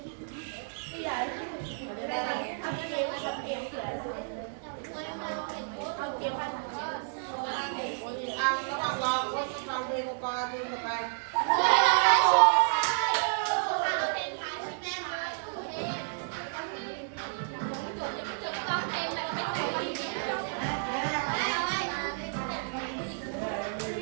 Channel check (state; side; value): silent; left; digital silence